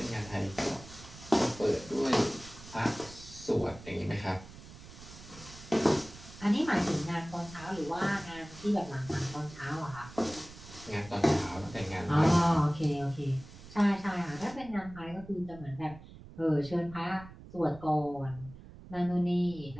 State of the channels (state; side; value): noise; right; rumble, 17 dB below the sound